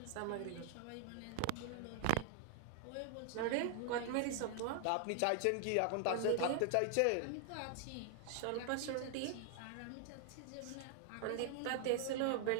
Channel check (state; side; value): different; both; correlation 0.00